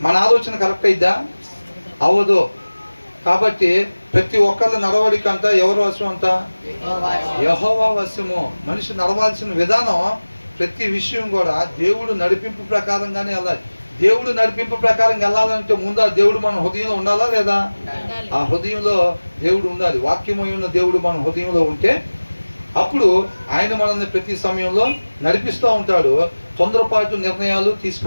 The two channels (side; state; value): both; inverted; correlation -1.00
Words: మన ఆలోచన కరెక్ట్ అయిద్దా? అవ్వదు. కాబట్టి ప్రతి ఒక్కళ్ళ నడవడిక అంతా ఎవరు వశం అంట? యెహోవా వశము. మనిషి నడవాల్సిన విధానం ప్రతి విషయం కూడా దేవుడు నడిపింపు ప్రకారంగానే వెళ్ళాలి. దేవుడు నడిపింపు ప్రకారం వెళ్ళాలంటే ముందు ఆ దేవుడు మన హృదయంలో ఉండాలా లేదా? ఆ హృదయంలో దేవుడు ఉండాలి. వాక్యమై ఉన్న దేవుడు మన హృదయంలో ఉంటే అప్పుడు ఆయన మనల్ని ప్రతి సమయంలో నడిపిస్తూ ఉంటాడు. తొందరపాటు నిర్ణయాలు